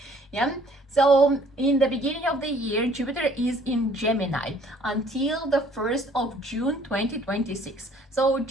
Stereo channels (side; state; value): both; normal; correlation 0.58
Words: Yeah, so in the beginning of the year, Jupiter is in Gemini until the 1st of June 2026. So